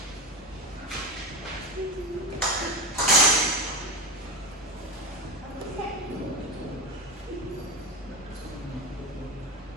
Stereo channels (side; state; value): both; normal; correlation 0.20